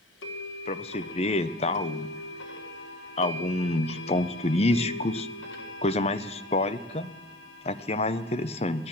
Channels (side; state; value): both; normal; correlation 0.40